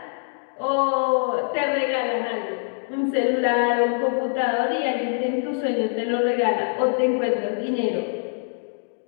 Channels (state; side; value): silent; right; 63 dB below the other